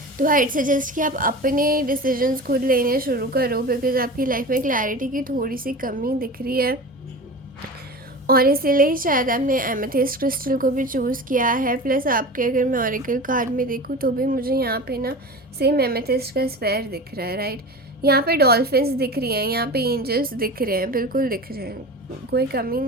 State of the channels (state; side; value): normal; both; correlation 0.32